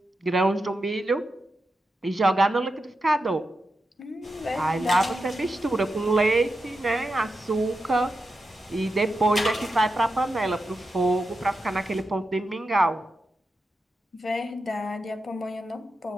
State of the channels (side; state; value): both; normal; correlation 0.89